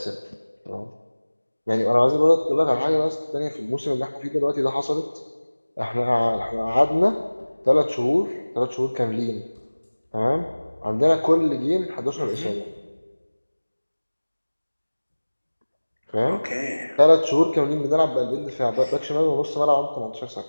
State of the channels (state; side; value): inverted; both; correlation -1.00